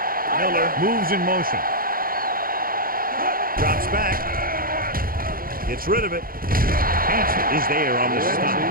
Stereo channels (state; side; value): late; left; 0.42 ms